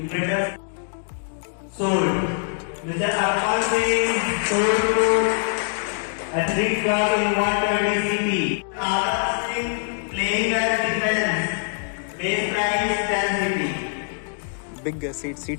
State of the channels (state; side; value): silent; right; digital silence